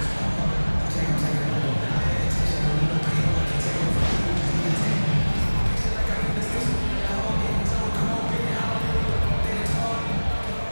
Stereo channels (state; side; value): inverted; both; correlation -1.00